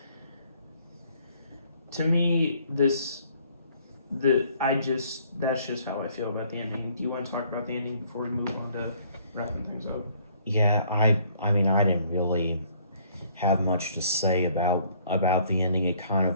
to me, that's just how I feel about the ending. Do you want to talk about the ending before we move on to wrapping things up? Yeah, I mean, I didn't really have much to say about the ending. It kind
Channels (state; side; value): inverted; both; correlation -0.62